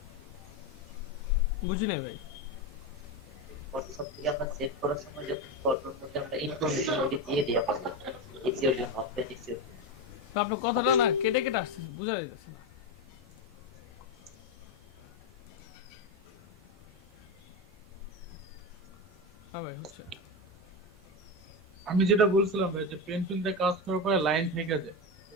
বুঝি নাই ভাই। তো আপনার কথাটা না কেটে কেটে আসছে, বোঝা যাইতেছে না। হ্যাঁ ভাই হচ্ছে। আমি যেটা বলছিলাম ভাই যে পেন্সিলতে কাজ করার পরে লাইন থেকে যায়,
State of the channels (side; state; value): both; normal; correlation 0.14